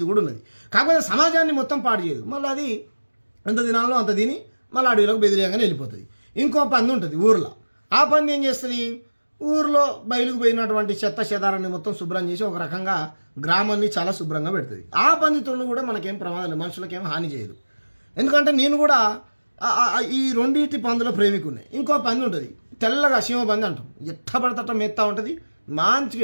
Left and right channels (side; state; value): both; inverted; correlation -1.00